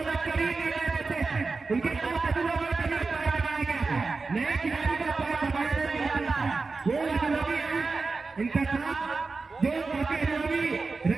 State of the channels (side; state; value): left; quieter; 4.1 dB